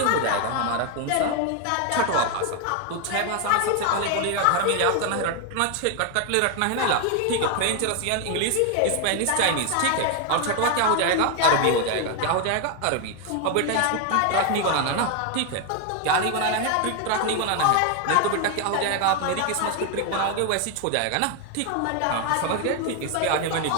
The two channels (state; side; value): different; both; correlation 0.01